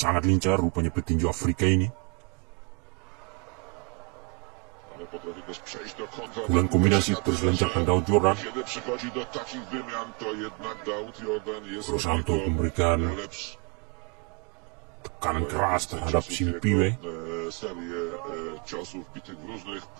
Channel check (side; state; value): left; quieter; 30.3 dB